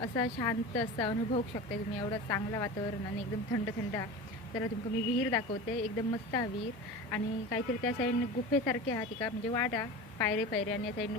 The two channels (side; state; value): both; normal; correlation 0.31